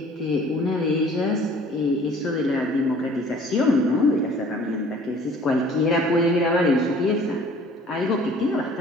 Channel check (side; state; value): both; normal; correlation 0.52